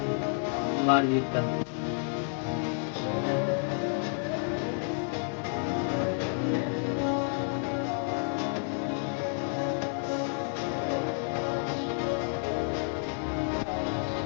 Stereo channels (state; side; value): silent; right; 58 dB below the other